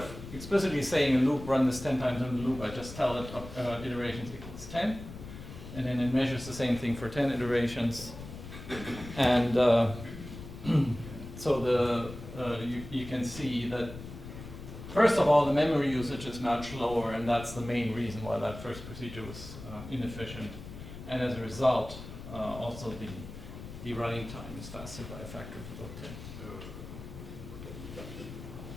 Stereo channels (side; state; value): left; noise; rumble, 12 dB below the sound